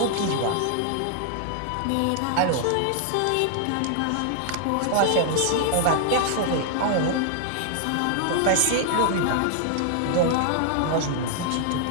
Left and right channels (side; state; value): both; different; correlation 0.00